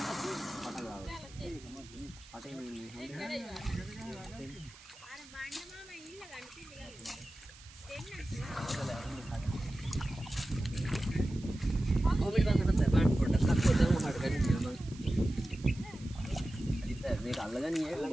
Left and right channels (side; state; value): right; noise; hiss, 20 dB below the sound